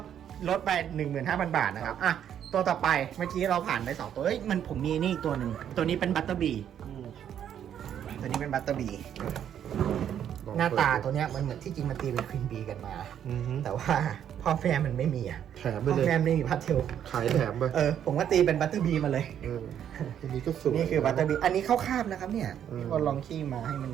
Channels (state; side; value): quieter; left; 9.6 dB